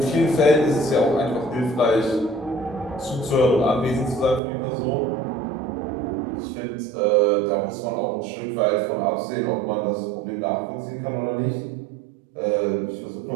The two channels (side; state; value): left; drops out; at 4.4 s